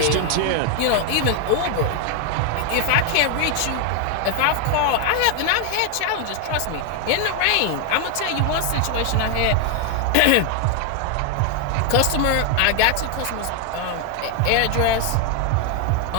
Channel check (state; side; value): different; both; correlation 0.01